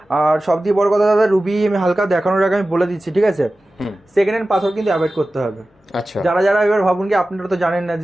আর সব দিয়ে বড় কথা দাদা, রুবি আমি হালকা দেখানোর আগে আমি বলে দিচ্ছি, ঠিক আছে, সেকেন্ড হ্যান্ড পাথর কিন্তু অ্যাভয়েড করতে হবে। আচ্ছা, যারা যারা এবার ভাবুন কি আপনারা তো জানেন না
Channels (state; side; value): normal; both; correlation 0.95